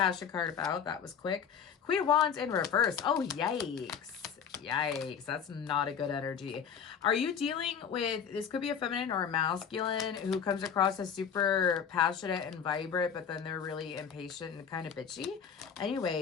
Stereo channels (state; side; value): quieter; right; 7.4 dB